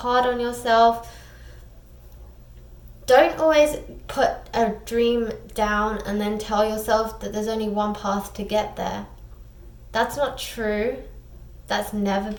on yourself. Don't always put a dream down and then tell yourself that there's only one path to get there. That's not true. That's never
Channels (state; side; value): identical; both; correlation 1.00